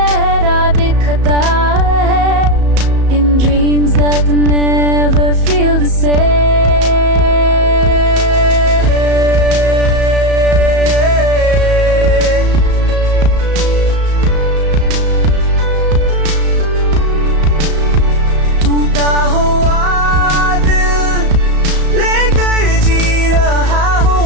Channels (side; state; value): left; late; 34 ms